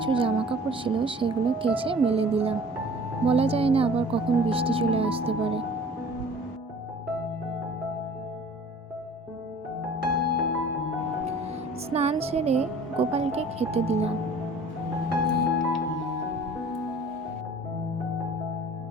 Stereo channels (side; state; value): both; normal; correlation 0.47